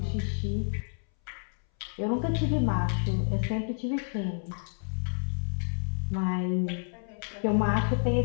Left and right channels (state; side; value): silent; right; 58 dB below the other